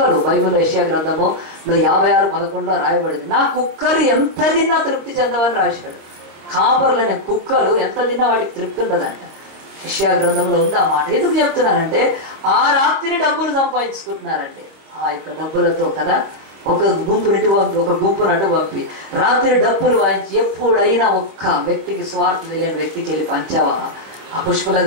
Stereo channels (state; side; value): late; left; 26 ms